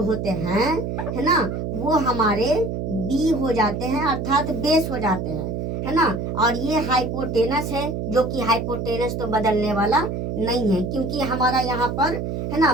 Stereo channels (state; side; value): noise; right; hum, 3 dB below the sound